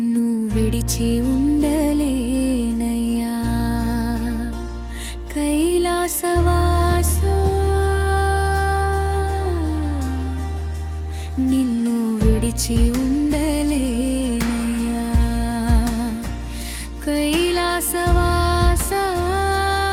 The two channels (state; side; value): identical; both; correlation 1.00